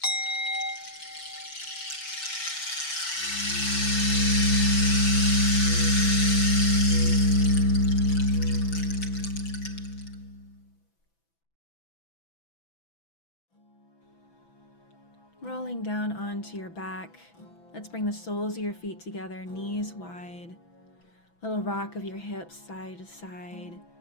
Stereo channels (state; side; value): late; right; 6.0 ms